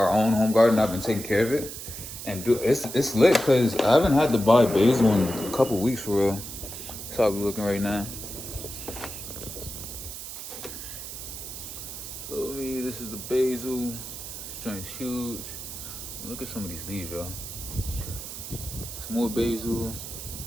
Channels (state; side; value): noise; right; hiss, 9 dB below the sound